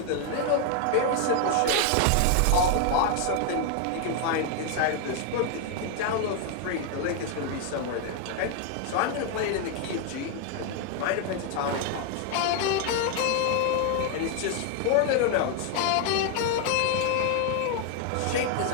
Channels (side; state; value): both; different; correlation 0.00